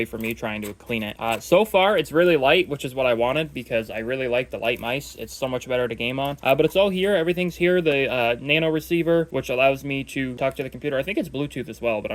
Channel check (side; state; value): both; identical; correlation 1.00